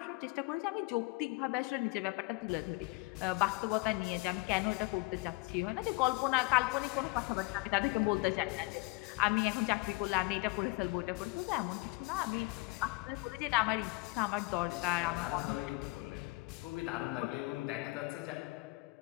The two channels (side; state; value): right; quieter; 25.3 dB